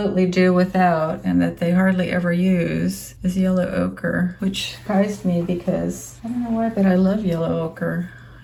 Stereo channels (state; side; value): identical; both; correlation 1.00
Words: do without and that they hardly ever use is yellow ochre, which surprised me because I don't know why, but I love yellow ochre.